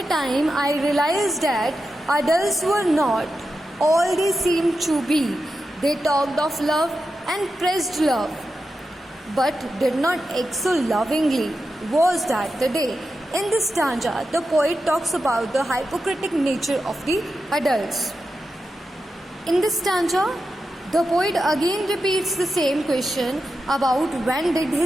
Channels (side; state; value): both; normal; correlation 0.89